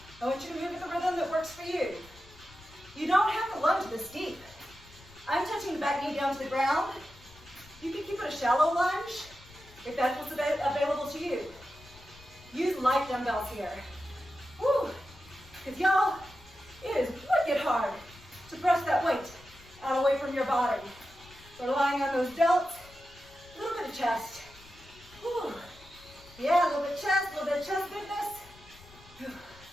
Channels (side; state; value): left; noise; rumble, 23 dB below the sound